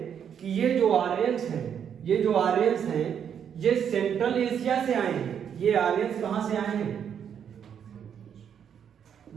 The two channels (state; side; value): quieter; left; 8.2 dB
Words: कि ये जो आर्यंस हैं ये सेंट्रल एशिया से आए हैं। ये आर्यंस कहां से आए हैं?